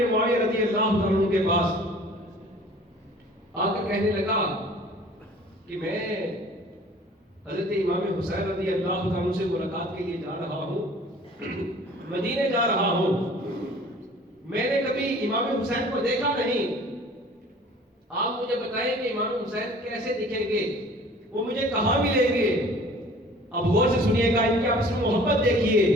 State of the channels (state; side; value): normal; both; correlation 0.49